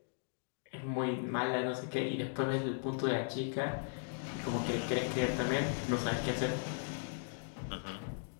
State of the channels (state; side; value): silent; right; digital silence